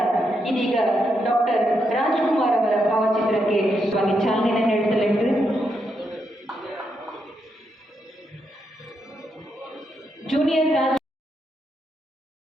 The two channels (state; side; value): normal; both; correlation 0.81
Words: ಇದೀಗ ಡಾಕ್ಟರ್ ರಾಜ್ಕುಮಾರ್ ಅವರ ಭಾವಚಿತ್ರಕ್ಕೆ ಚಾಲನೆ ನೀಡಲಿದ್ದು ಜೂನಿಯರ್ ರಾಜ್